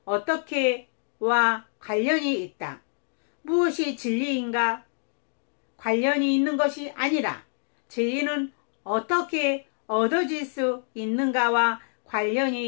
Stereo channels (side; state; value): right; silent; digital silence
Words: 어떻게와 관련이 있다. 무엇이 진리인가 관련이 있는 것이 아니라 진리는 어떻게 얻어질 수 있는가와